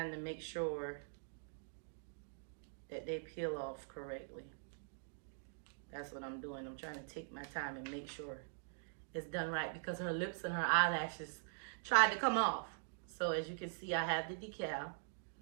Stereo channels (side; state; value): left; silent; digital silence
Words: to make sure that they peel off correctly. That's what I'm doing. I'm trying to take my time and make sure it's done right, because her lips and her eyelashes tried to come off. So as you can see, I have the decal.